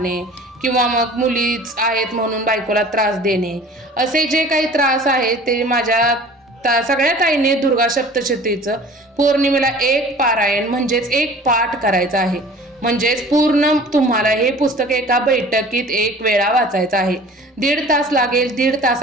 किंवा मग मुलीच आहेत म्हणून बायकोला त्रास देणे, असे जे काही त्रास आहेत ते माझ्या सगळ्या ताईंनी दुर्गा सप्तशतीचं पौर्णिमेला एक पारायण म्हणजेच एक पाठ करायचा आहे. म्हणजेच पूर्ण तुम्हाला हे पुस्तक एका बैठकीत एक वेळा वाचायचं आहे. 1.5 तास लागेल, 1.5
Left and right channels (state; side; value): normal; both; correlation 0.45